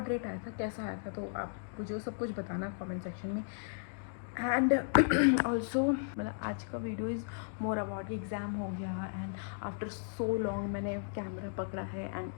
आया था, कैसा आया था, तो आप मुझे सब कुछ बताना कमेंट सेक्शन में। एंड ऑल्सो मतलब आज का video is more about exam हो गया एंड आफ्टर सो लॉन्ग मैंने कैमरा पकड़ा है एंड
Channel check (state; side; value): silent; right; digital silence